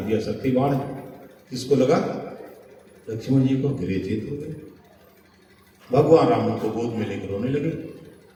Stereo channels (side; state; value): both; identical; correlation 1.00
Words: दिया शक्ति बाण। किसको लगा? लक्ष्मण जी को। गिरे जीत हो गए। भगवान राम उनको गोद में लेकर रोने लगे।